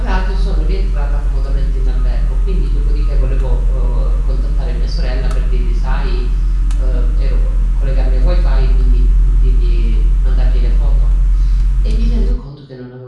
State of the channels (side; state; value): both; identical; correlation 1.00